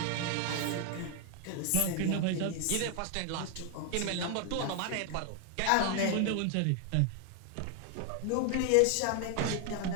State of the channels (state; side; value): different; both; correlation 0.00